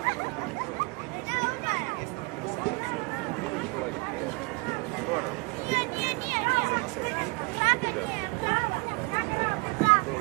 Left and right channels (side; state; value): left; quieter; 28.4 dB